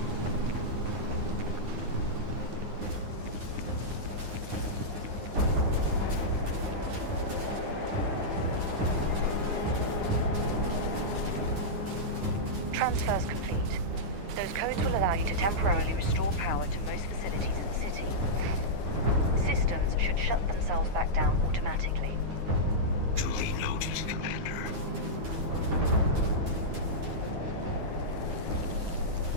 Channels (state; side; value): late; left; 9.6 ms